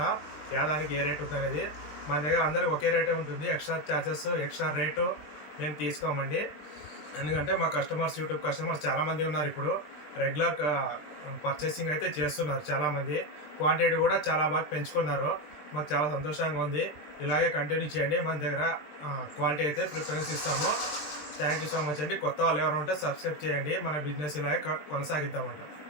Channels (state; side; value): late; right; 20 ms